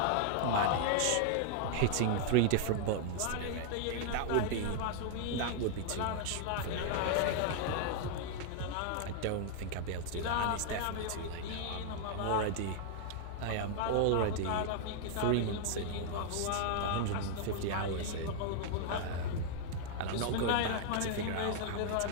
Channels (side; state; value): both; different; correlation -0.01